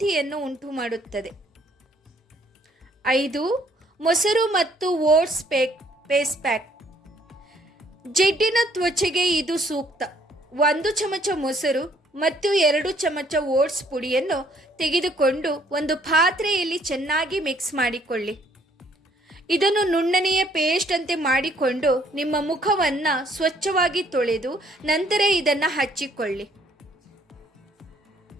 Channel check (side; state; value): both; normal; correlation 0.64